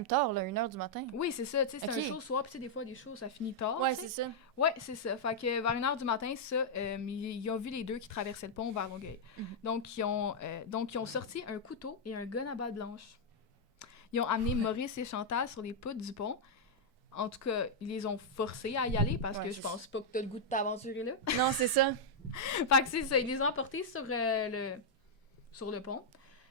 tard, là, 1h du matin. Oui, c'est ça, tu sais, c'est Ok. un show soir, puis tu sais, des fois, des shows, ça finit tard, Ouais, tu sais. c'est ça. Ouais, c'est ça. Fait que vers 1h du matin, ça, ils ont vu les deux qui traversaient le pont vers Longueuil. Mhm. Donc, ils ont sorti un couteau et un gun à balle blanche. Ils ont amené Maurice et Chantal sur les poutres du pont. En tout cas, ils les ont forcés à y aller parce Ouais, que je c'est pense pas que t'as le goût de t'aventurer là. Non, c'est ça. Fait que c'est ça, ils les ont emportés sur le pont.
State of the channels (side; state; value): both; normal; correlation -0.05